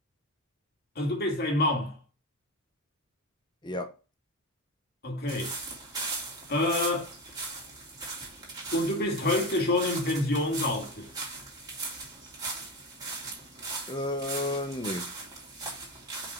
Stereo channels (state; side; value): normal; both; correlation 0.21